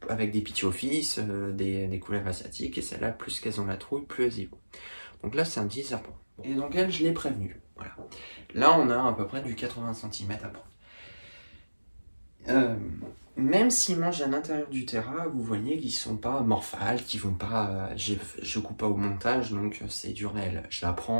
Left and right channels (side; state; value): both; inverted; correlation -1.00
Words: avec des pithiophyes, des couleuvres asiatiques, et celles-là, plus qu'elles ont la trouille, plus elles y vont. Donc là c'est un petit serpent. Et donc elle, je l'ai prévenu. Voilà. Là on a à peu près du 80 cm à prendre. Même s'ils mangent à l'intérieur du terrain, vous voyez qu'ils sont pas morphales, qu'ils vont pas. Je coupe pas au montage, donc c'est du réel. Je la